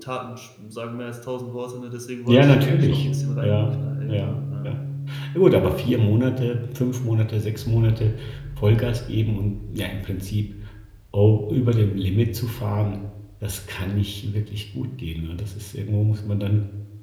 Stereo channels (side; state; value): both; identical; correlation 1.00